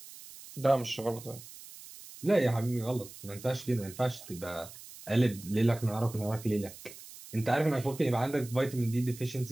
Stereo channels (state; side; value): noise; right; hiss, 16 dB below the sound